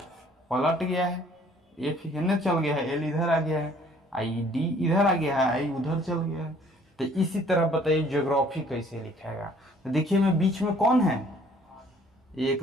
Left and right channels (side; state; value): both; normal; correlation 0.58